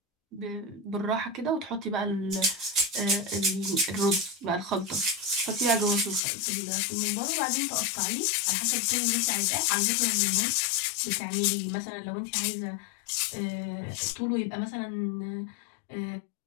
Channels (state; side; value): drops out; right; at 6.2 s